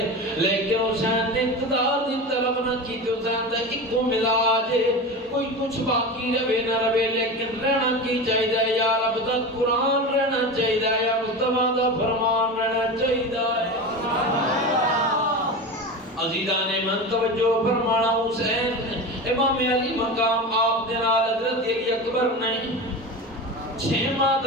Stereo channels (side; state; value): both; normal; correlation 0.26